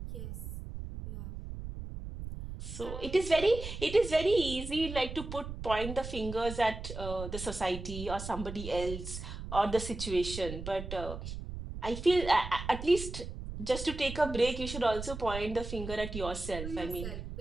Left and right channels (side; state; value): right; noise; rumble, 8 dB below the sound